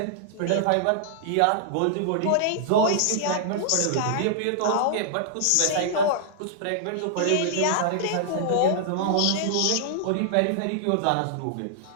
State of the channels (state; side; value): different; both; correlation -0.01